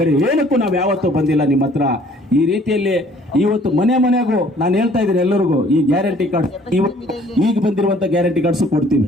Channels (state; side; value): normal; both; correlation 0.57